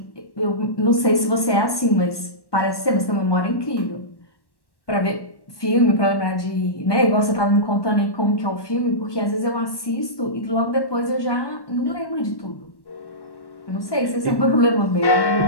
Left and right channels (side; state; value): right; late; 1.1 ms